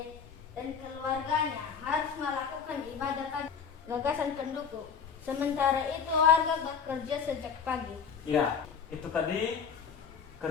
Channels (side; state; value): right; quieter; 6.6 dB